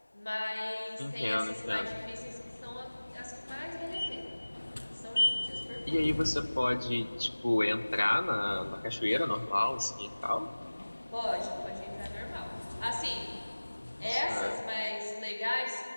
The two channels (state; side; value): inverted; both; correlation -1.00